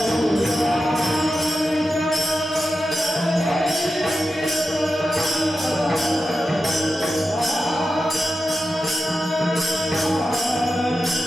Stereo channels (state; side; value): normal; both; correlation 0.91